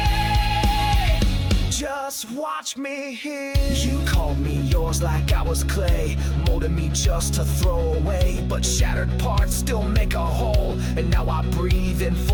just watch me heal. You called me yours like I was clay, molded me just to throw away. But shattered parts still make a whole, and now I breathe in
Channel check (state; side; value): identical; both; correlation 1.00